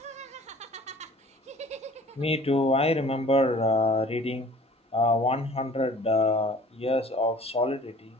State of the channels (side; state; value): both; normal; correlation 0.49